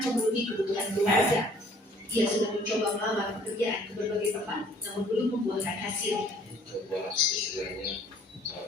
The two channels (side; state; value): both; normal; correlation 0.57